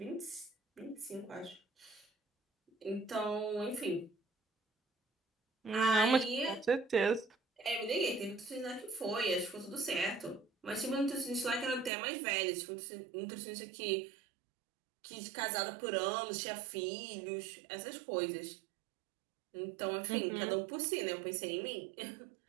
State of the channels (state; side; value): drops out; left; at 11.9 s